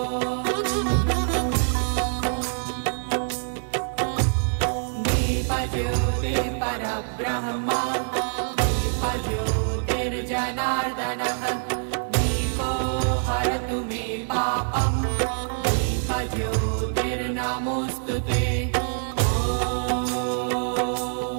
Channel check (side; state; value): left; silent; digital silence